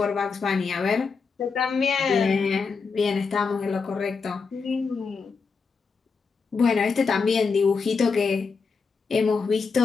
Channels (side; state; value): right; quieter; 5.0 dB